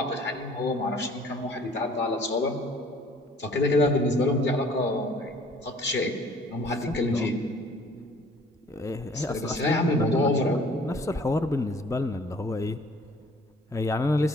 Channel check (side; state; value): both; normal; correlation 0.53